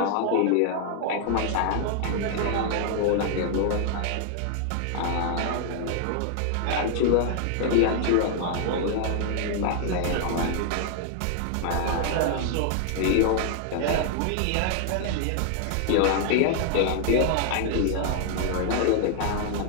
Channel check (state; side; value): different; both; correlation 0.00